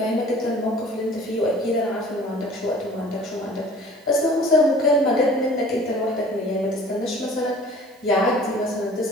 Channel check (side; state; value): right; noise; hiss, 30 dB below the sound